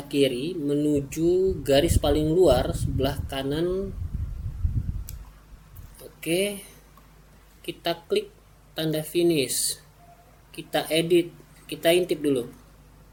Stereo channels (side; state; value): both; identical; correlation 1.00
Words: kiri menuju garis paling luar sebelah kanan. Oke, kita klik tanda finish, kita edit, kita intip dulu.